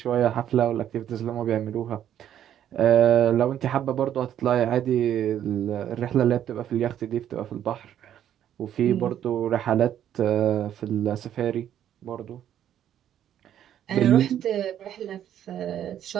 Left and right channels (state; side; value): quieter; left; 10.5 dB